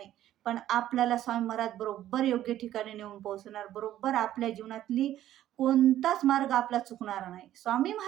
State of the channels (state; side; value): quieter; left; 12.7 dB